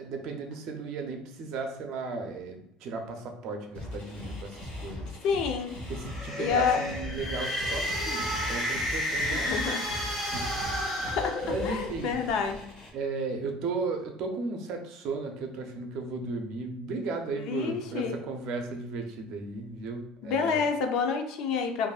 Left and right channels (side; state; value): both; normal; correlation 0.43